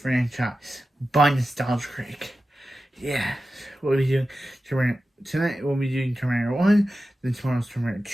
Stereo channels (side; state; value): both; normal; correlation 0.93